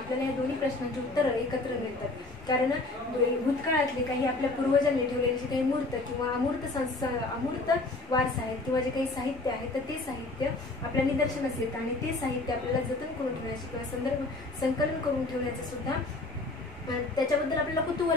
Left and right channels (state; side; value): quieter; right; 3.2 dB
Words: या दोन्ही प्रश्नांची उत्तरं एकत्र मिळतात. कारण भूतकाळातले काही आपल्या पूर्वजांनी ठेवलेले जे काही मूर्त किंवा अमूर्त वारसा आहेत किंवा जे काही साहित्य आहे तर ते साहित्य आपल्या निदर्शनास येतं आणि ते साहित्य आपल्याला जतन करून ठेवण्याचे किंवा संकलन करून ठेवण्याचं सुद्धा त्याच्याबद्दल आपल्याला